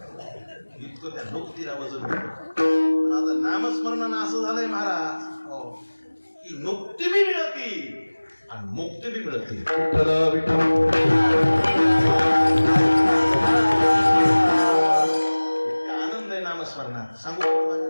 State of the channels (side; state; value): both; inverted; correlation -1.00